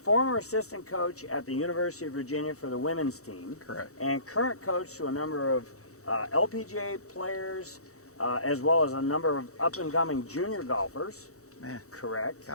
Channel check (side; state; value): right; late; 0.65 ms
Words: assistant coach at the University of Virginia for the women's team. Correct. And current coach to a number of LPGA players, as well as a number of up-and-coming junior golfers. Man. Correct.